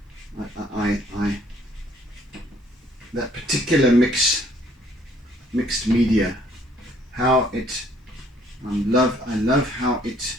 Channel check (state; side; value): normal; both; correlation 0.62